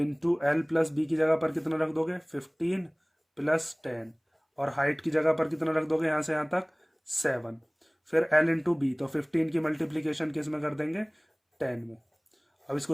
एल प्लस बी की जगह पर कितना रख दोगे, 15 प्लस 10, और हाइट की जगह पर कितना रख दोगे यहाँ से यहाँ तक, 7। फिर एल इंटू बी, तो 15 की मल्टीप्लीकेशन किस में कर देंगे, 10 में। अब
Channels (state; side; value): identical; both; correlation 1.00